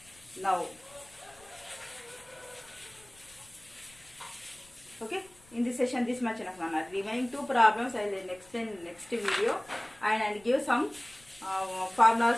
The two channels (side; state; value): left; noise; rumble, 27 dB below the sound